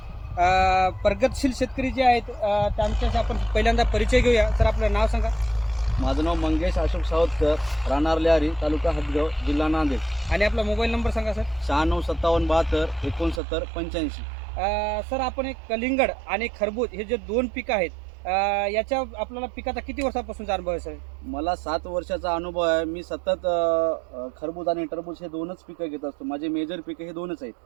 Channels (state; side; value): drops out; left; at 13.4 s